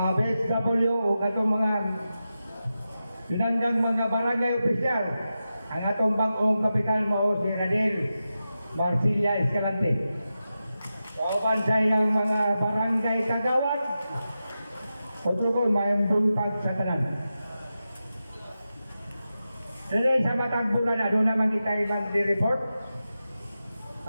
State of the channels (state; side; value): inverted; both; correlation -0.91